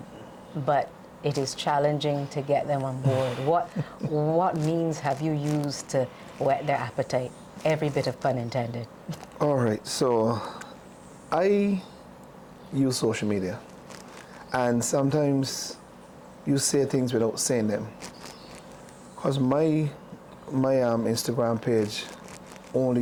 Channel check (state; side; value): identical; both; correlation 1.00